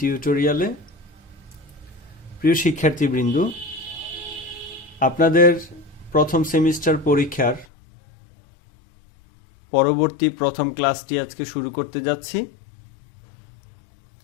প্রিয় শিক্ষার্থীবৃন্দ, আপনাদের প্রথম সেমিস্টার পরীক্ষার পরবর্তী প্রথম ক্লাসটি আজকে শুরু করতে যাচ্ছি।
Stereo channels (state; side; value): drops out; right; at 7.7 s